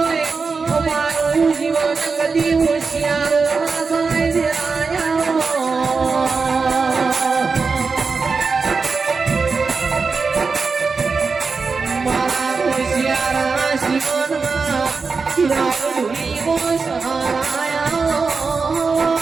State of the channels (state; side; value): quieter; left; 4.7 dB